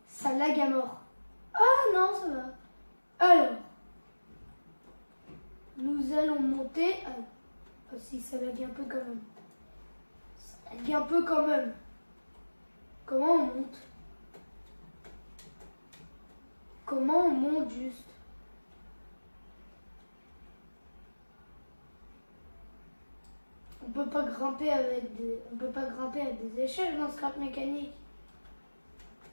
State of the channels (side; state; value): both; inverted; correlation -1.00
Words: Ça lag à mort. Ah non, ça va. Alors, nous allons monter. Ah si, ça lag un peu quand même. Ça lag un peu quand même. Comment on monte? Comment on monte juste? On peut pas grimper avec des échelles dans scrap mécanique.